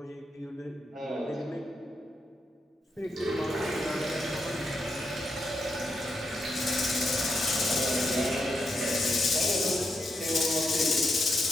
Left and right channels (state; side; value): normal; both; correlation 0.83